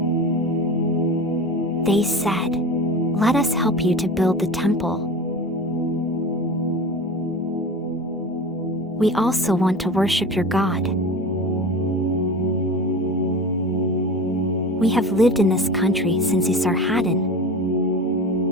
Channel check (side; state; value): both; normal; correlation 0.32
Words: They said, "Let us help you to build the temple. We also want to worship your God. We have lived in this country since Esarhaddon,